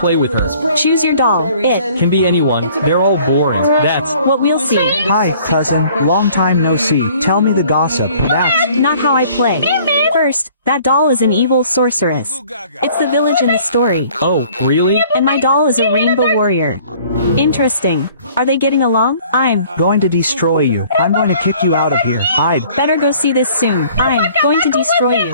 with her. Choose your doll. It Can be anyone. They're all boring. That's what we'll see. Hi, cousin. Long time no see. Tell me the gossip. That's Not how I play. First, that doll is an evil sorceress. It's the village in the story. Oh, really? And my doll is a rainbow warrior. Interesting. Are they getting along? I'm going to destroy you. I'm going to kick you out of here. I'd better go see this soon. I'm going to destroy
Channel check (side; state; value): both; inverted; correlation -0.54